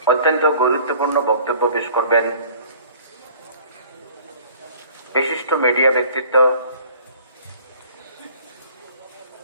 অত্যন্ত গুরুত্বপূর্ণ বক্তব্য পেশ করবেন বিশিষ্ট মিডিয়া ব্যক্তিত্ব,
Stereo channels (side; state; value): both; inverted; correlation -0.50